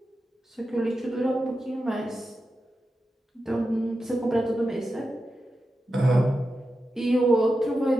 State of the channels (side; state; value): both; normal; correlation 0.90